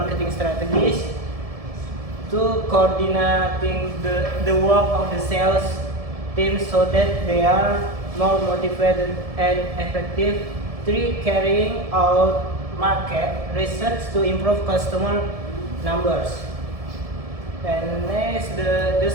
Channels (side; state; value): left; late; 1.7 ms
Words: strategies. 2, coordinating the work of the sales team so that they are more motivated and effective. 3, carrying out market research to improve customer numbers. And next, the